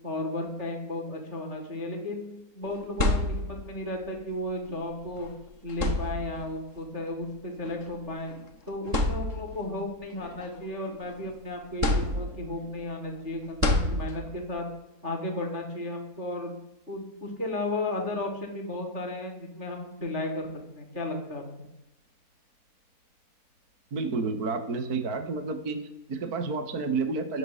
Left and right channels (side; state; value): left; late; 3.7 ms